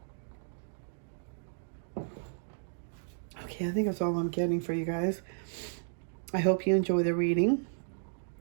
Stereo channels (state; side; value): silent; left; digital silence